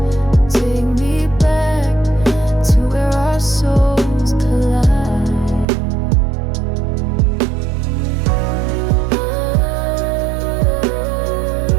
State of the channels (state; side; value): drops out; left; at 5.7 s